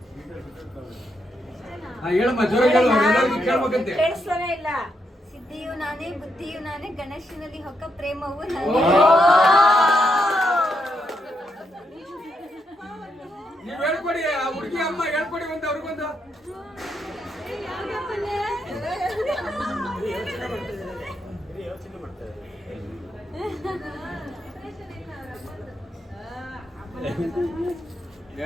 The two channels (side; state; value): both; normal; correlation 0.81